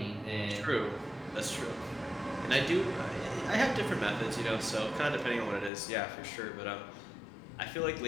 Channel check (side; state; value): right; drops out; at 5.7 s